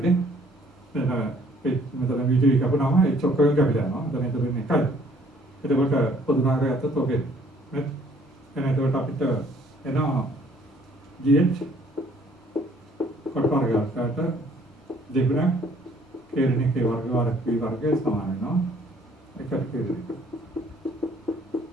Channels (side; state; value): both; normal; correlation 0.60